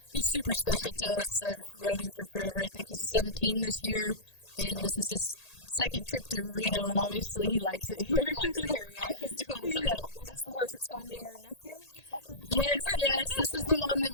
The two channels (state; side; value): late; right; 1.8 ms